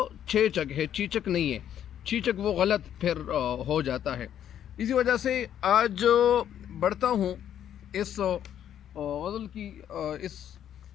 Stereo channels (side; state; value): right; quieter; 10.1 dB